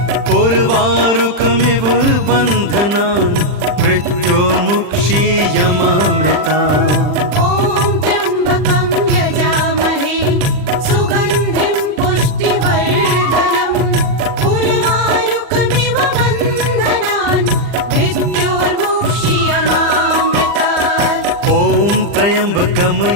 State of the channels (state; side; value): late; left; 40 ms